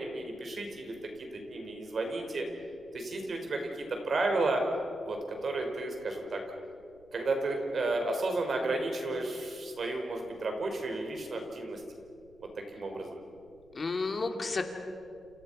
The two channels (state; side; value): noise; right; rumble, 28 dB below the sound